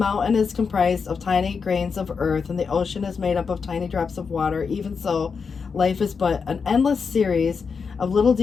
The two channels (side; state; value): right; quieter; 5.5 dB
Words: is comprised of tiny grains of earth, and the ocean is made up of tiny drops of water. Even so, life is but an endless series of little